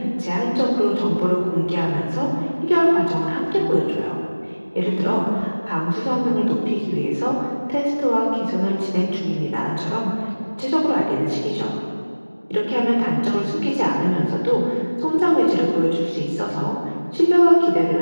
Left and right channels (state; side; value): inverted; both; correlation -1.00